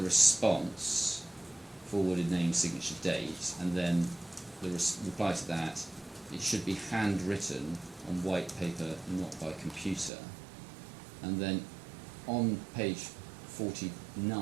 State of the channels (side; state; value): left; drops out; at 10.1 s